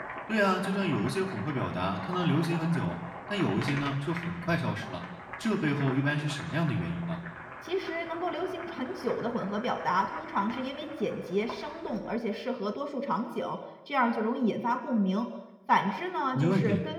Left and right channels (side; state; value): both; identical; correlation 1.00